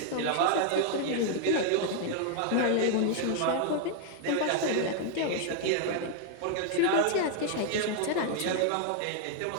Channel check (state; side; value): different; both; correlation 0.00